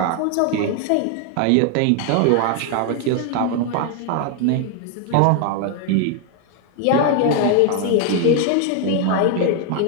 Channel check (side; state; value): both; different; correlation 0.00